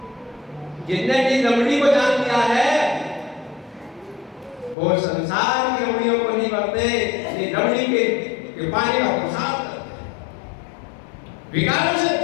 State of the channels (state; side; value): drops out; right; at 4.8 s